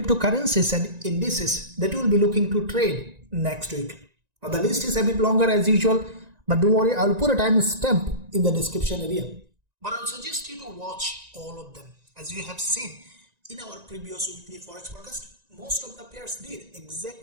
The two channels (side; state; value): left; late; 1.9 ms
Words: and indices that we will be looking to trade next week. Now, the list is a bit longer as usual, but don't worry, I will put a time stamp in the description area. But I will suggest you to watch all of them. As you have seen in our previous weekly Forex forecast, most of the pairs did